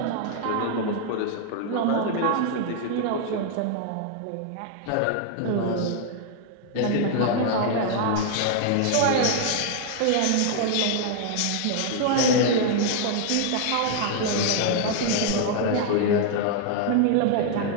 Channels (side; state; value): both; different; correlation 0.00